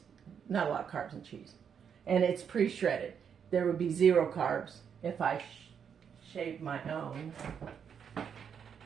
not a lot of carbs in cheese. And it's pre-shredded. There would be 0 carbs if I shave my own.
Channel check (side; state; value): left; quieter; 7.5 dB